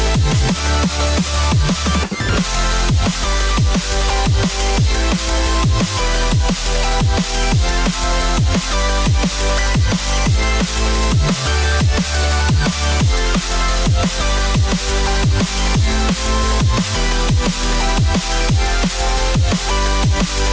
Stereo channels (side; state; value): both; identical; correlation 1.00